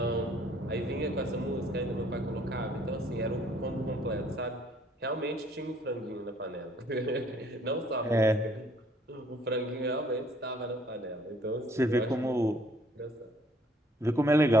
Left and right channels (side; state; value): both; normal; correlation 0.61